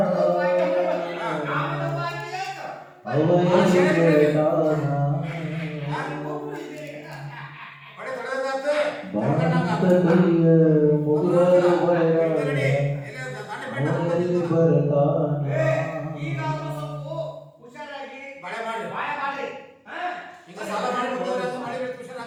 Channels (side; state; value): both; identical; correlation 1.00